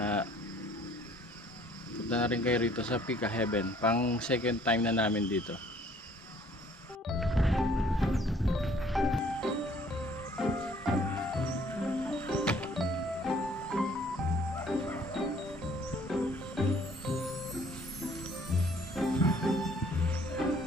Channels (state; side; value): normal; both; correlation 0.58